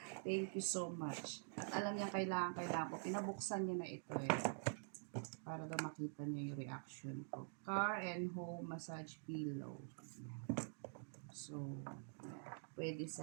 thank you so much. At alam niya kailangan ko. Pinabuksan niya na ito eh. Para daw makita niya yung reaction ko. Car and home massage pillow. Ayan. So, pwede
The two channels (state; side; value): silent; left; digital silence